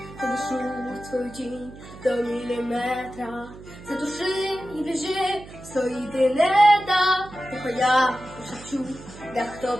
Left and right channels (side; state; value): right; noise; hum, 17 dB below the sound